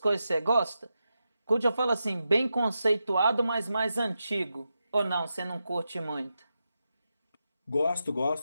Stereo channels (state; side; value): inverted; both; correlation -0.88